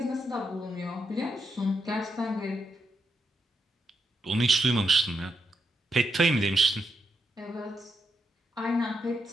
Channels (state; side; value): normal; both; correlation 0.81